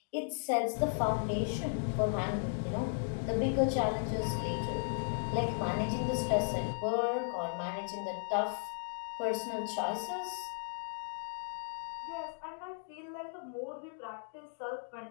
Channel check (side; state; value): right; silent; digital silence